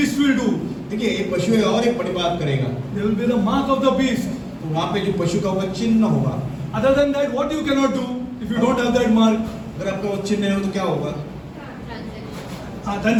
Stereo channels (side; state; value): both; identical; correlation 1.00